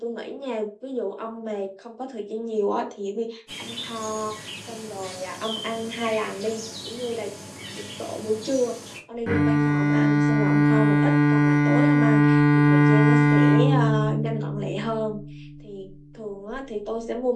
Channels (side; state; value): both; identical; correlation 1.00